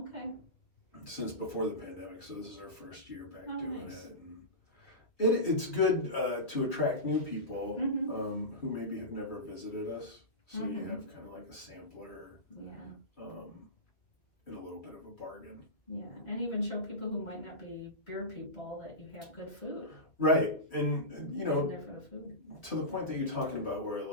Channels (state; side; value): late; right; 2.1 ms